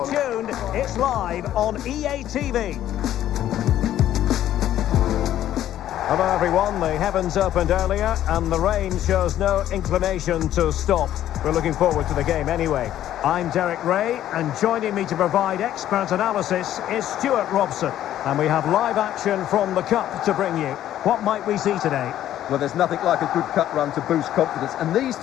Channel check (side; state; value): right; quieter; 12.1 dB